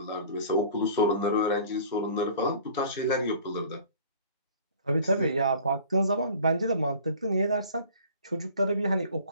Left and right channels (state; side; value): inverted; both; correlation -0.47